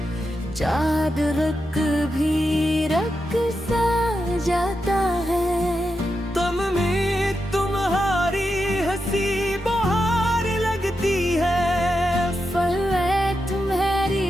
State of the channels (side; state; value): both; normal; correlation 0.87